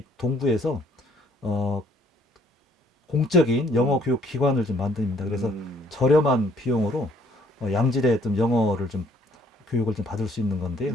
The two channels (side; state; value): both; normal; correlation 0.63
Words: 동구에서 공적인 영어 교육 기관을 좀 만듭니다. 그래서 저렴한 비용으로 양질의 좀 영어를 좀 교육을 좀 받을 수 있는 건데요.